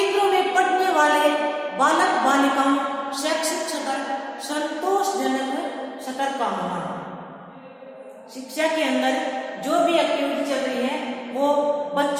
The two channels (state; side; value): identical; both; correlation 1.00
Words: में पढ़ने वाले बालक बालिकाओं शैक्षिक स्तर संतोषजनक स्तर का होना। शिक्षा के अंदर जो भी एक्टिविटी चल रही है वो